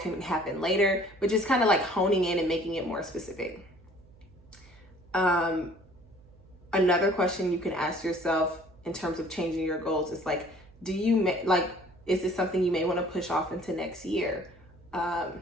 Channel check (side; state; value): right; noise; hum, 26 dB below the sound